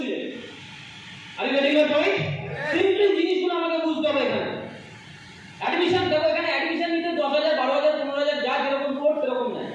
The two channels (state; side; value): identical; both; correlation 1.00